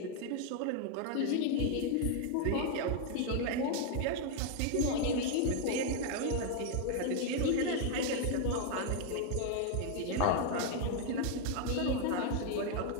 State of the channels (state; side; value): different; both; correlation 0.00